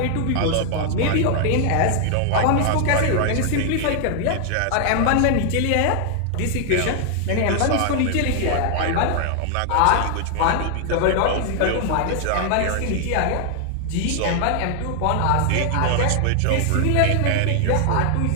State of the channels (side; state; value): both; different; correlation 0.00